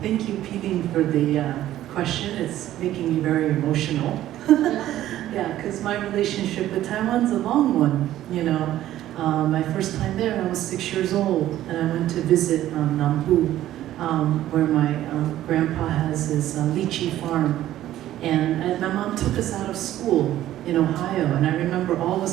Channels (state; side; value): quieter; left; 13.4 dB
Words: thank you, Peeling, for the question. It's making me very emotional. Yeah, because my relationship with Taiwan's a long one, you know. My first time there, I was 6 years old, and I went to visit Nambu, where my grandpa has his lychee farm. And my mom took us out of school in Ohio, and I remember all of a